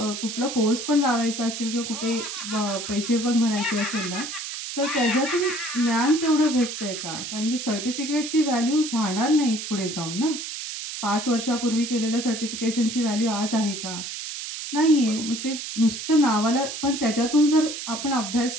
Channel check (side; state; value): right; noise; hiss, 7 dB below the sound